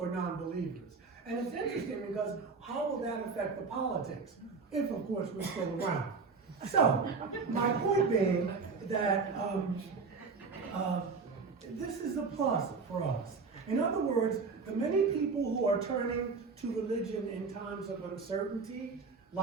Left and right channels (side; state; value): left; quieter; 4.7 dB